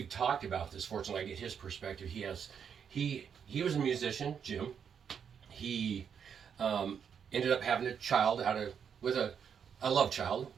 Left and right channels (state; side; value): quieter; left; 7.4 dB